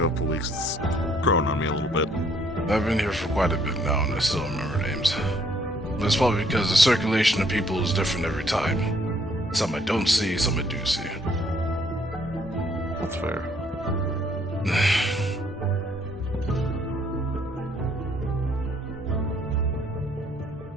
weeks, it's grown on me a little bit. I've been here for quite a bit now, and I still remember names. That's probably because the circulation of people is different every time. Some I don't see, some I do see. That's fair.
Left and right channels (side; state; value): both; normal; correlation 0.65